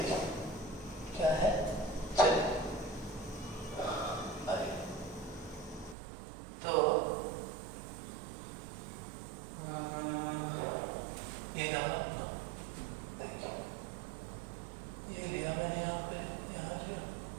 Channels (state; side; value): drops out; left; at 6.0 s